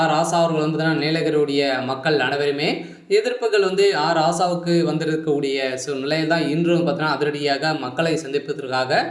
ராசா அவர்கள் பார்த்தீங்கன்னா நீலகிரியுடைய மக்கள் அனைவருமே எதிர்ப்புகள் ராசாவுக்கு வந்திருக்கக்கூடிய நிலையில் தான் இன்றும் பார்த்தீங்கன்னா அதிரடியாக மக்களை சந்திப்பதற்காக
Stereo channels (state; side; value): identical; both; correlation 1.00